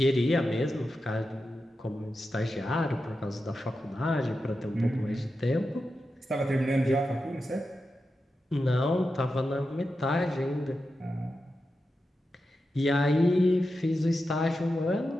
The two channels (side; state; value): both; normal; correlation 0.90